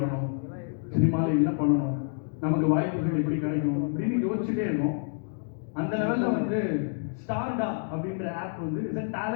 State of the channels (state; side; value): silent; right; digital silence